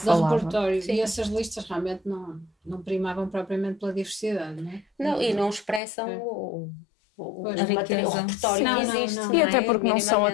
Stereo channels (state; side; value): drops out; right; at 5.8 s